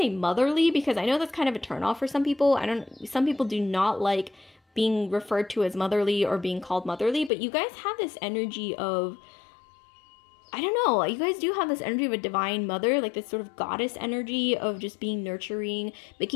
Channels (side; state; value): right; drops out; at 7.3 s